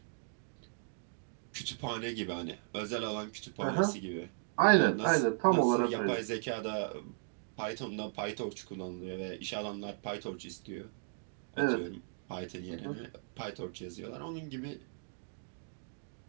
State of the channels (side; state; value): left; silent; digital silence